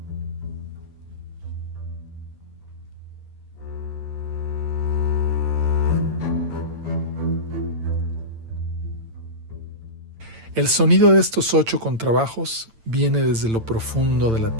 El sonido de estos 8 contrabajos viene desde lo profundo de la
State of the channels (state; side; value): late; left; 8.9 ms